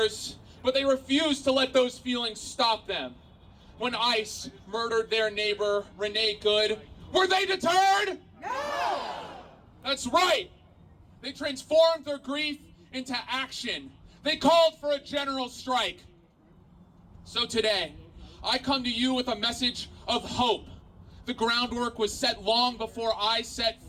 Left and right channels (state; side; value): identical; both; correlation 1.00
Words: but they refused to let those feelings stop them. When ICE murdered their neighbor, Renee Good, were they deterred? No! That's right. They transformed their grief into action. They called for a general strike. So today, I come to you with a message of hope. The groundwork was set long before I set